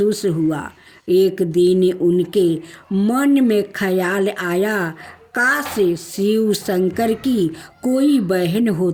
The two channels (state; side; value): identical; both; correlation 1.00